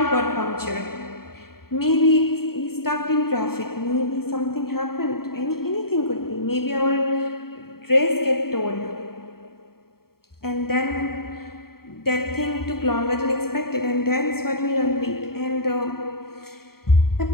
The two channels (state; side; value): late; right; 0.94 ms